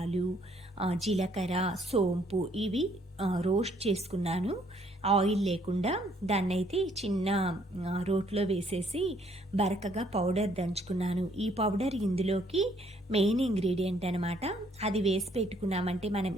జీలకర్ర, సోంపు ఇవి రోస్ట్ చేసుకున్నాను. ఆయిల్ లేకుండా దాన్నైతే చిన్న రోట్లో వేసేసి బరకగా పౌడర్ దంచుకున్నాను. ఈ పౌడర్ ఇందులోకి మెయిన్ ఇంగ్రీడియంట్ అనమాట. అది వేసి పెట్టుకున్నామంటే మనం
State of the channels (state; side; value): normal; both; correlation 0.66